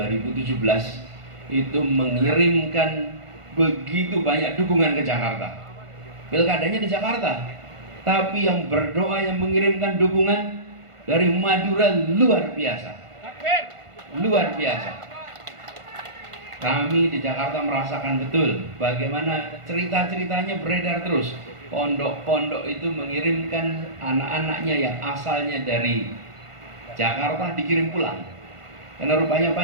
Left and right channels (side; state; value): left; late; 1.5 ms